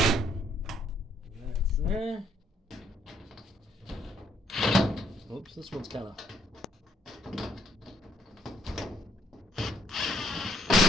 That's there. Oops, this one's kind of.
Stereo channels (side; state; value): both; normal; correlation 0.69